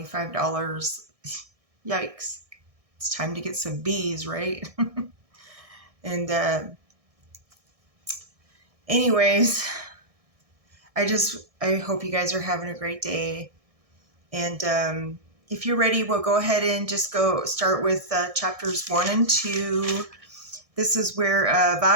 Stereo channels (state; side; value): late; left; 1.6 ms